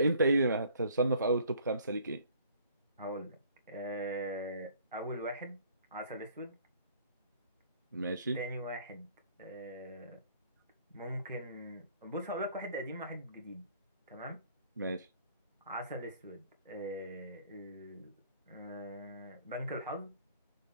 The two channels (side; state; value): both; inverted; correlation -0.58